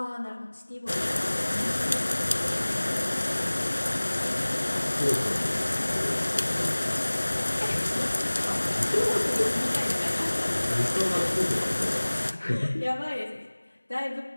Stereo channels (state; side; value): inverted; both; correlation -1.00